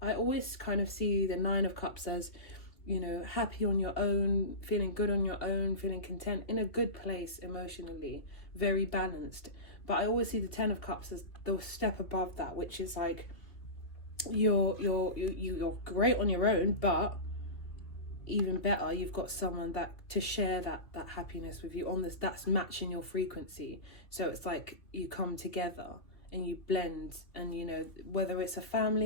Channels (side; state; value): right; late; 2.7 ms